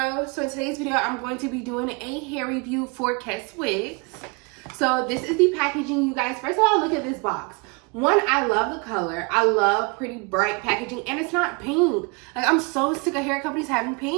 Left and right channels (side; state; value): left; quieter; 31.3 dB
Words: So in today's video, I'm going to be doing a hair review for Keswigs. So this is the packaging, you guys. First of all, look at this box. One, I love the color. I love pretty bright packaging, and it's not pink. Like, I'm so sick of hair companies having